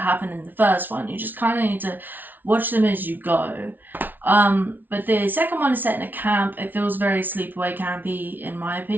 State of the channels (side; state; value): left; late; 0.086 ms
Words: happen in the first one. You just kind of need to watch them as you go. But the second one is set in a camp. It feels very sleepaway campy in my